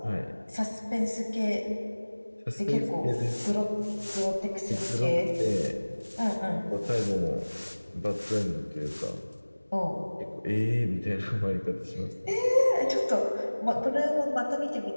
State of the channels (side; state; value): both; inverted; correlation -1.00